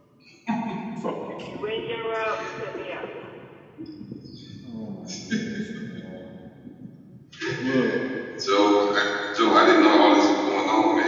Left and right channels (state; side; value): identical; both; correlation 1.00